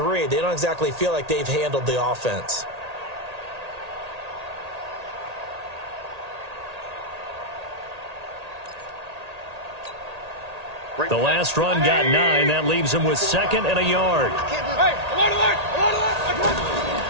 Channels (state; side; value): late; left; 1.8 ms